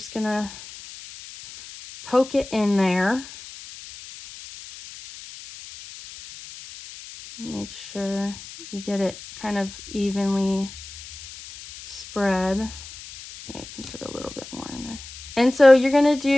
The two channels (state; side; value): noise; left; hiss, 15 dB below the sound